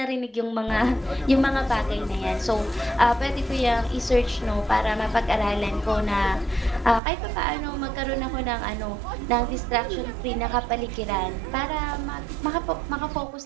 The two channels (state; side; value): drops out; left; at 7.0 s